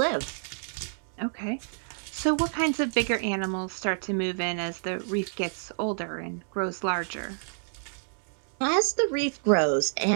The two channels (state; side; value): silent; left; digital silence